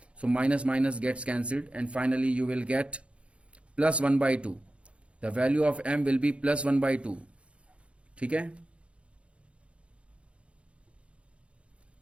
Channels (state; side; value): late; left; 0.060 ms